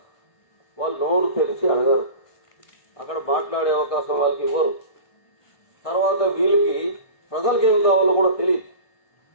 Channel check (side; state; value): right; late; 1.6 ms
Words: వాళ్ళు నోరు తెరిచి అడగరు, అక్కడ మాట్లాడే అవకాశం వాళ్ళకి ఇవ్వరు. తర్వాత వీళ్ళకి ప్రజలకు ఏం కావాలో కూడా తెలియదు.